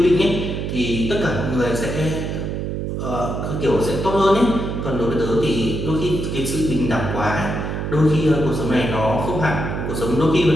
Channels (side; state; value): right; noise; hum, 3 dB below the sound